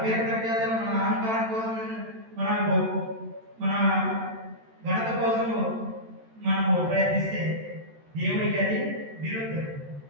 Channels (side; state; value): left; late; 13 ms